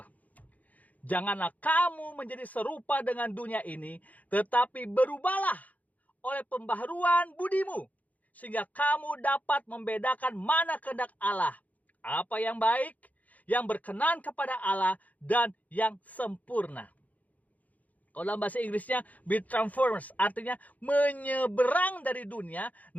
Janganlah kamu menjadi serupa dengan dunia ini, tetapi berubahlah oleh pembaharuan budimu, sehingga kamu dapat membedakan mana kehendak Allah, apa yang baik, yang berkenan kepada Allah, dan yang sempurna. Kalau dalam bahasa Inggrisnya be transformed, artinya menyeberang dari dunia,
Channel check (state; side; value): late; right; 0.076 ms